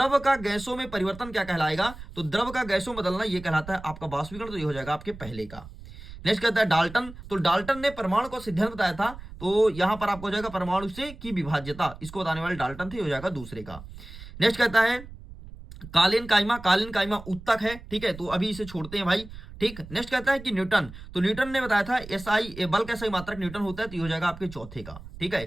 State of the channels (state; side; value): noise; right; rumble, 15 dB below the sound